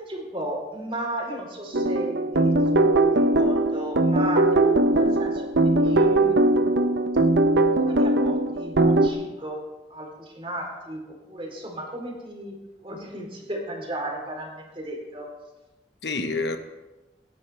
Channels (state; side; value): normal; both; correlation 0.34